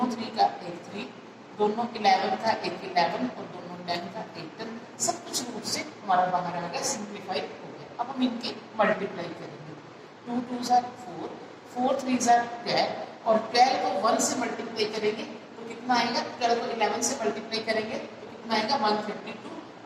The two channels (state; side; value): identical; both; correlation 1.00